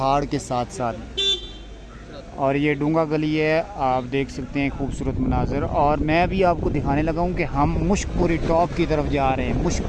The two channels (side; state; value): both; identical; correlation 1.00